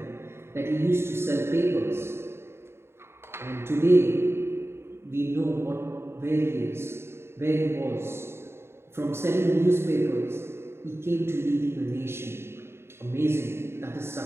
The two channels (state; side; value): late; left; 0.12 ms